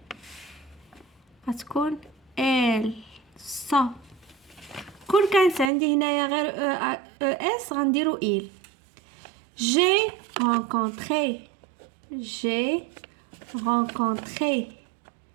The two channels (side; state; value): left; drops out; at 5.7 s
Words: غتكون elle. sans. كون كانت عندي هنايا غير اس غنديرو il. J'ai rencontré.